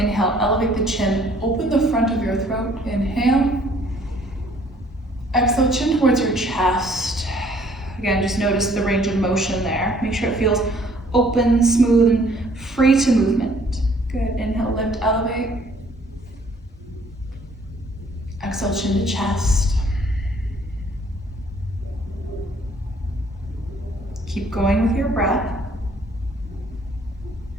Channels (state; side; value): normal; both; correlation 0.60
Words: elevate the chin, open the front of your throat, inhale. Exhale, chin towards your chest. Again, just notice the range of motion there. Make sure it feels open, smooth, and free to movement. Good, inhale, lift, elevate. Exhale, chin to chest. Keep going with your breath.